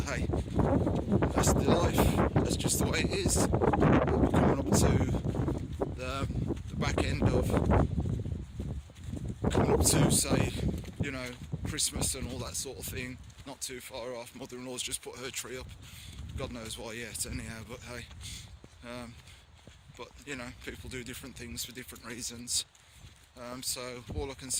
hey, that's the life. That's just the way it is. We're coming up to the back end of coming up to, say, you know, Christmas and all that sort of thing. Not too far off. Mother-in-law's just put her tree up. God knows why yet, anyhow. But hey, but you know, people do different things for different reasons. So all I can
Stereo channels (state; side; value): identical; both; correlation 1.00